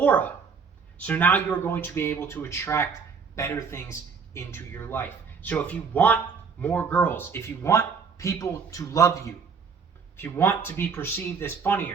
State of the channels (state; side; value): quieter; left; 5.7 dB